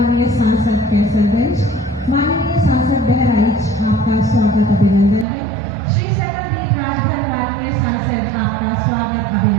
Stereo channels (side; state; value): left; drops out; at 5.2 s